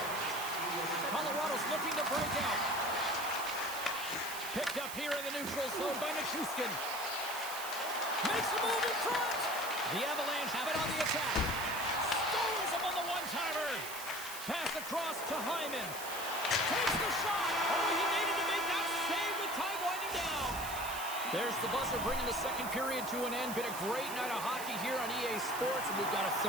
Colorado's looking to break out. Picked up here in the neutral zone by Nichushkin. Makes a move in front. The Avalanche have it on the attack. Stones him on the one-timer. Pass across to Hyman. Takes the shot. Oh, he needed to make that save with time winding down. There's the buzzer bringing the second period to an end. Been a great night of hockey here on EA Sports, and we've got a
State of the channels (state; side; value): noise; right; hiss, 9 dB below the sound